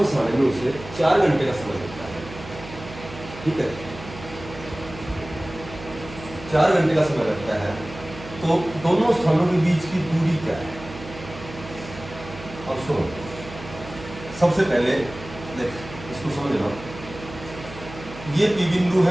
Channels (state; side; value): noise; right; hum, 14 dB below the sound